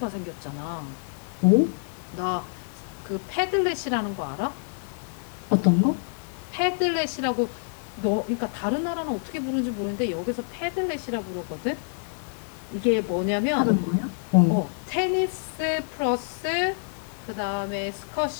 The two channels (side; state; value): right; silent; digital silence